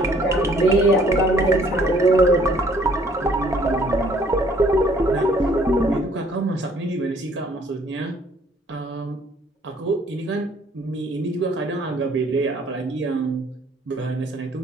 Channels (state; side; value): normal; both; correlation 0.60